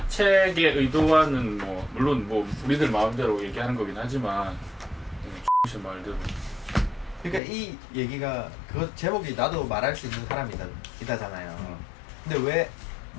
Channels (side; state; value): right; drops out; at 7.4 s